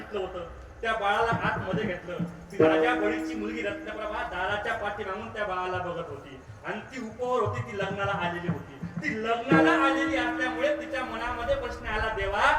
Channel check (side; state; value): both; identical; correlation 1.00